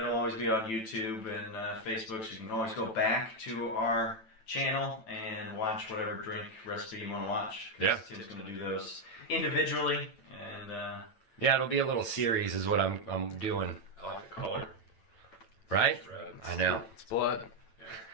always be on YouTube and Facebook, so you can always go back to our channel and watch whatever drink recipe you want to watch. Yeah. Tim's going to do those individually, and Yeah, it'll be a little series is what I'm doing. I like the color. Right? It's red. I know. It's blood.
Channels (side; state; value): right; late; 9.0 ms